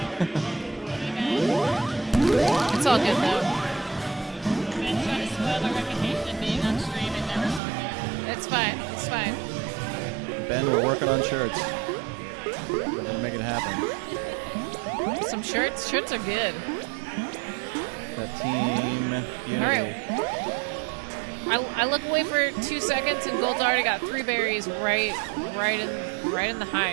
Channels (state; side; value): drops out; left; at 7.6 s